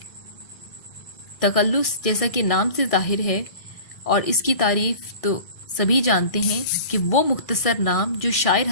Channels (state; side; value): late; right; 1.6 ms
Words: तख़ल्लुस जैसा कि नाम से ज़ाहिर है, और इसकी तारीफ़ तो सभी जानते हैं कि वो मुख्तसर नाम जो शायर